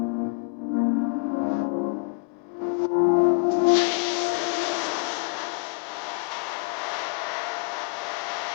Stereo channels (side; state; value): right; quieter; 33.8 dB